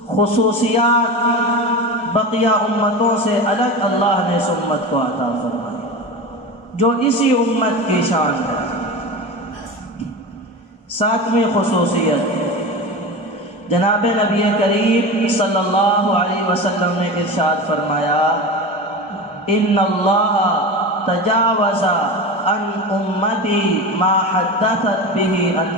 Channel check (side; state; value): both; normal; correlation 0.27